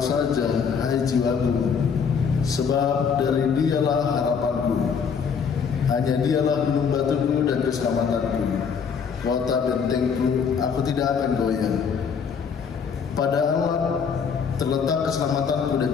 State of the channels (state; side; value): quieter; right; 6.4 dB